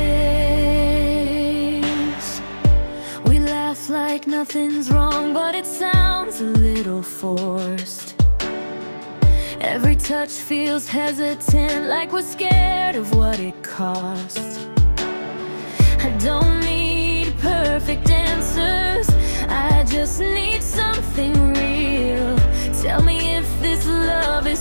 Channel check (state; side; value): inverted; both; correlation -1.00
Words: We laugh like nothing's wrong, but it sounds a little forced. Every touch feels hesitant, like we're scared of what it costs. I don't need perfect answers, I just need something real. Tell me if this love is